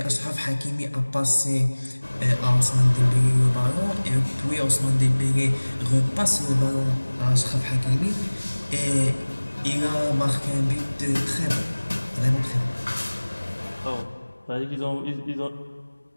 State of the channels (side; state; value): both; inverted; correlation -1.00